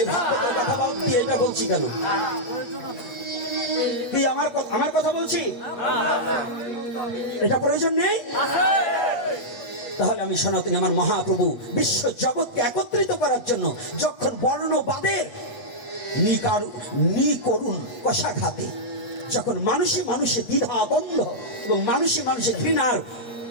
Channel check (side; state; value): right; late; 8.3 ms